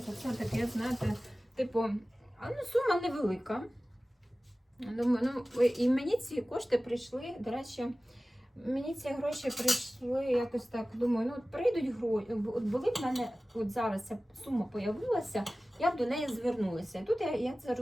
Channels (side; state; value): both; normal; correlation 0.97